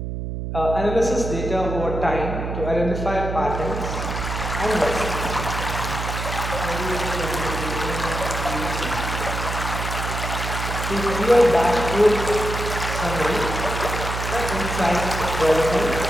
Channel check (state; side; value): noise; right; hum, 4 dB below the sound